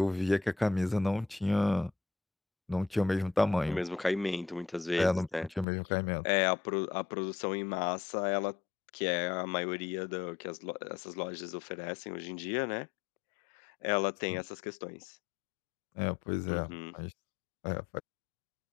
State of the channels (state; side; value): drops out; right; at 5.7 s